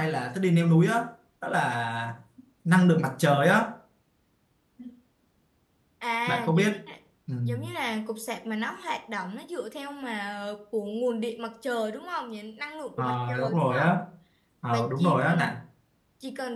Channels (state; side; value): identical; both; correlation 1.00